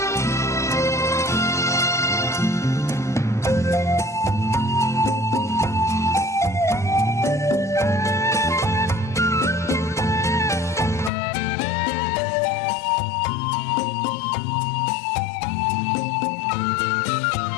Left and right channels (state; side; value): drops out; right; at 11.1 s